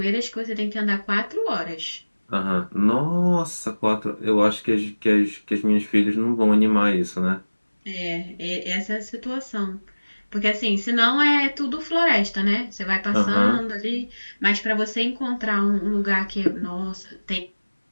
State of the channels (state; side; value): inverted; both; correlation -1.00